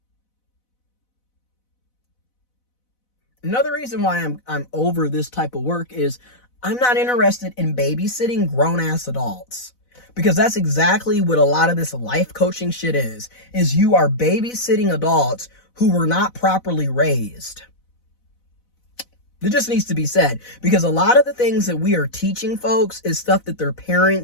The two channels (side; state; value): right; late; 4.0 ms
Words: Another reason why I'm over this type of work is I'm not interested in babysitting grown-ass adults. Because that's exactly what a lot of this life coaching shit is you are babysitting adults who were not properly raised. It just needs to be said. Because a lot of the things that we are teaching folks is stuff that their